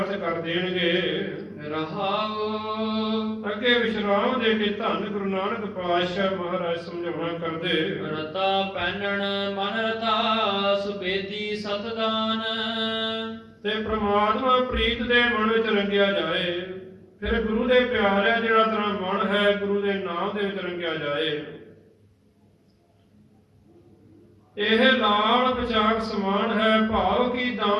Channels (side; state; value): both; identical; correlation 1.00